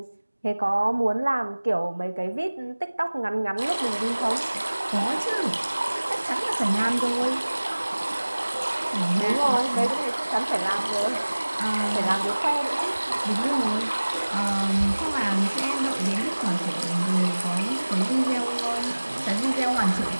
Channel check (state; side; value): inverted; both; correlation -1.00